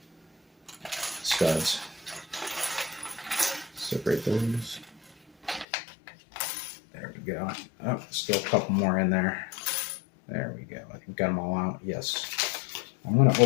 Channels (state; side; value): drops out; right; at 5.7 s